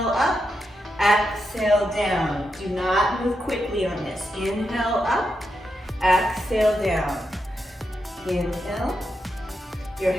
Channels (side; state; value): both; normal; correlation 0.85